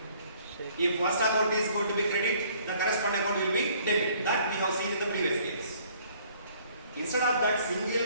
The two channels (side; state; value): both; inverted; correlation -0.59